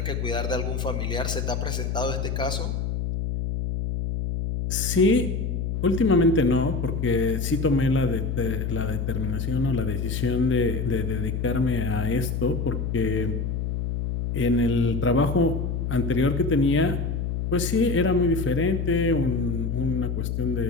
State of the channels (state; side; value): noise; left; hum, 2 dB below the sound